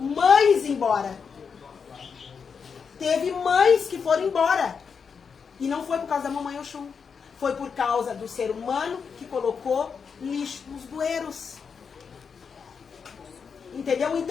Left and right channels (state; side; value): quieter; right; 6.0 dB